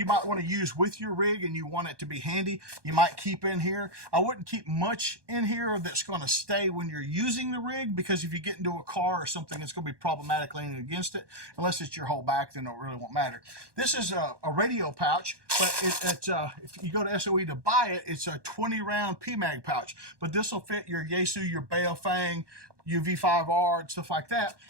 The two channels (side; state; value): left; late; 1.2 ms